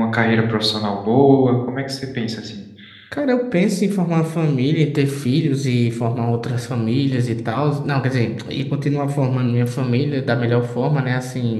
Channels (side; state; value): both; identical; correlation 1.00